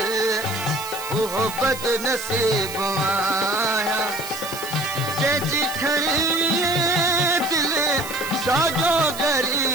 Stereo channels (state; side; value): noise; right; hiss, 11 dB below the sound